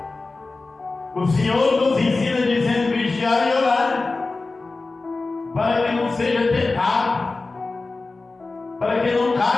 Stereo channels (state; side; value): quieter; right; 3.6 dB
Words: O Senhor nos ensina dizendo: vigiar e orar, para que não seja tentado, para que não